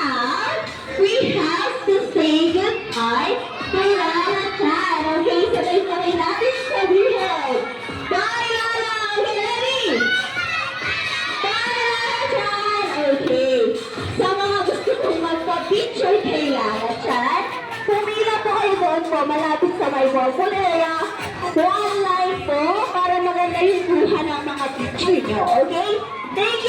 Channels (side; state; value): both; identical; correlation 1.00